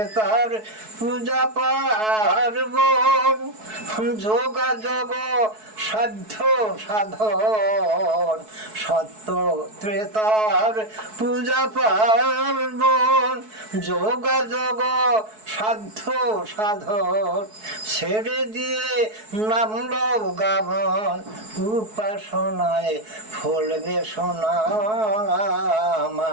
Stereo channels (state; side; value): late; left; 4.6 ms